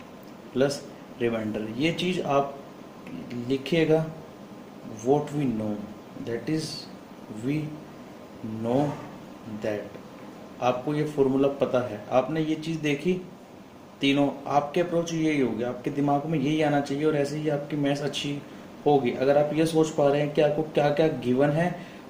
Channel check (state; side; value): identical; both; correlation 1.00